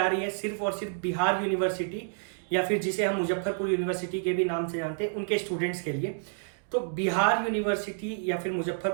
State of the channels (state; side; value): silent; left; digital silence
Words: रही है सिर्फ और सिर्फ बिहार यूनिवर्सिटी या फिर जिसे हम मुजफ्फरपुर यूनिवर्सिटी के भी नाम से जानते हैं, उनके स्टूडेंट्स के लिए। तो बिहार यूनिवर्सिटी या फिर